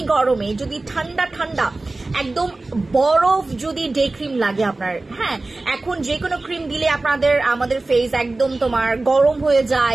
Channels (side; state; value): left; quieter; 3.1 dB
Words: গরমে যদি ঠান্ডা ঠান্ডা একদম বরফ যদি ডে ক্রিম লাগে আপনার, হ্যাঁ এখন যে কোনো ক্রিম দিলে আমাদের ফেস একদম তোমার গরম হয়ে